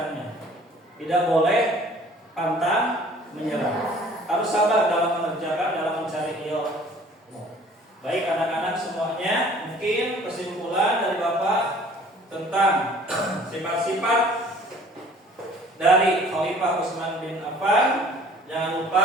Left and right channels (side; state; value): both; normal; correlation 0.52